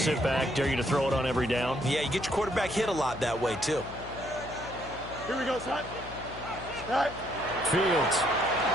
sit back, dare you to throw it on every down? Yeah, you get your quarterback hit a lot that way, too. Here we go, son. Right. Fields.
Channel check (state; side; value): noise; left; hum, 14 dB below the sound